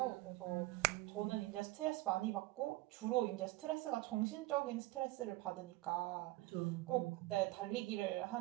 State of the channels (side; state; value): left; quieter; 19.2 dB